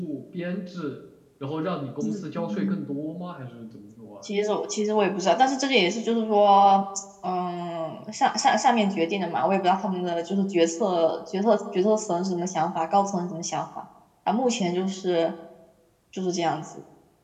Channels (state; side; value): identical; both; correlation 1.00